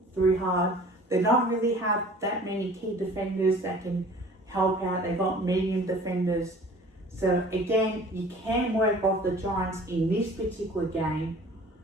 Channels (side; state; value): both; normal; correlation 0.47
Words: through hard. They don't really have that many key defenders that can help out. They've got medium defenders. So again, you can work off the Giants in this particular game,